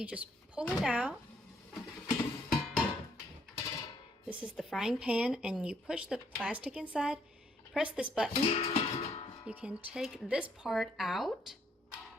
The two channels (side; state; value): both; normal; correlation 0.70